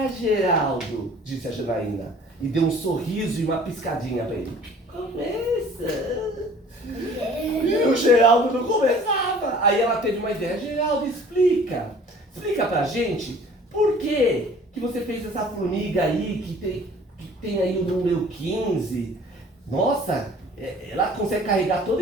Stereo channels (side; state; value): both; normal; correlation 0.50